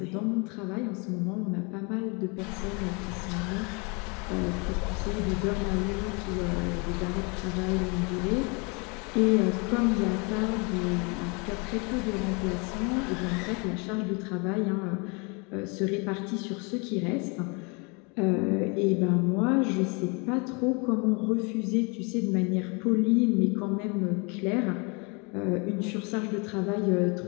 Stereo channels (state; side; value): quieter; right; 31.6 dB